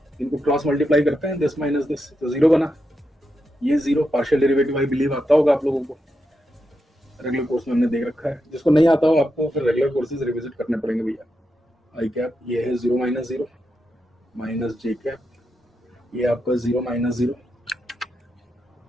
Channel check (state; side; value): normal; both; correlation 0.86